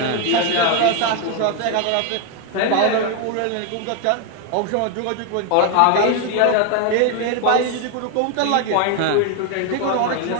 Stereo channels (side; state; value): both; different; correlation 0.01